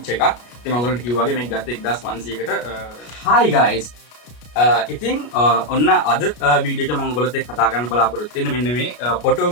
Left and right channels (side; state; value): right; late; 33 ms